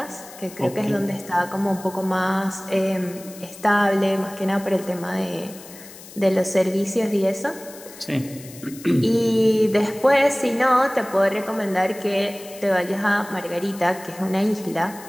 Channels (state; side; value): noise; left; hiss, 18 dB below the sound